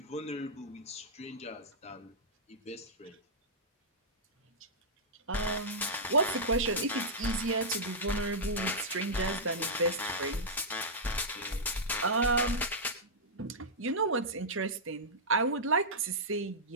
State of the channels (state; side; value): normal; both; correlation -0.10